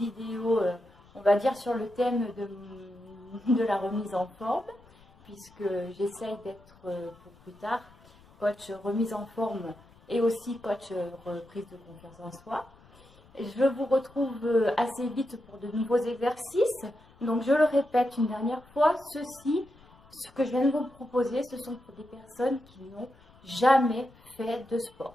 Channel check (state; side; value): noise; left; rumble, 26 dB below the sound